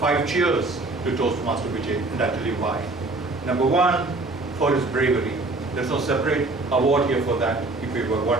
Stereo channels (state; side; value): quieter; left; 3.1 dB